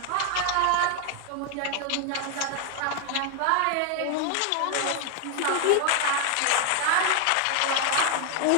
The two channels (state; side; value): different; both; correlation 0.00